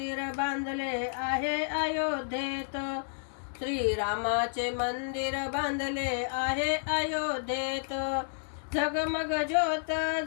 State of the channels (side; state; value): right; silent; digital silence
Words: बांधले आहे अयोध्येत, श्रीरामाचे मंदिर बांधले आहे अयोध्येत। झगमग ज्योत